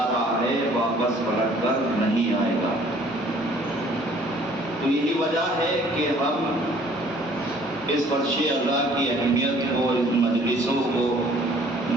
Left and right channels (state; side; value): normal; both; correlation 0.56